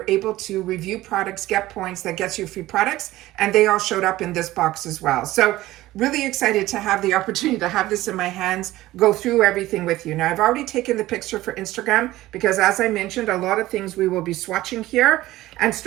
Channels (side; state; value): left; quieter; 16.6 dB